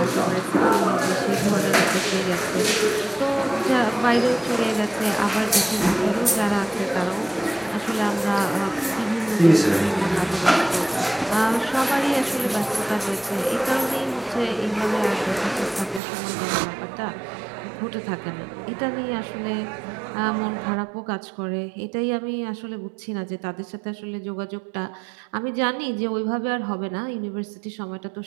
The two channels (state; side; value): drops out; left; at 16.0 s